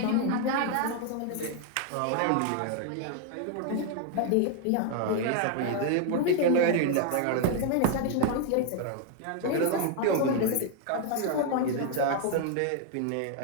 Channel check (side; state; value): both; different; correlation 0.00